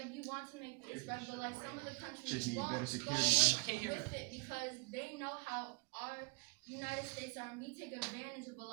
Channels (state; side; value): quieter; left; 33.8 dB